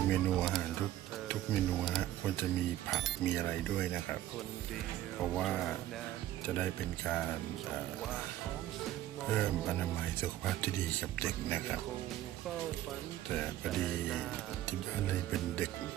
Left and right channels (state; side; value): quieter; left; 13.6 dB